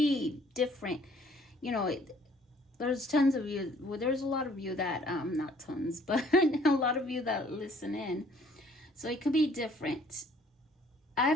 different. You know, there's tons of you, well, there's a lot of you that, not tons, but a lot of you that listen in. So it could be different. I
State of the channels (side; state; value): both; normal; correlation 0.59